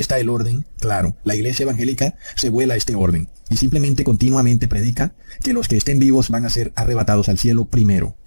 el orden, claro. La iglesia evangélica se vuela a este orden, y simplemente continuamente predica que los que estén vivos van a ser arrebatados al cielo primero.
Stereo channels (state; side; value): inverted; both; correlation -1.00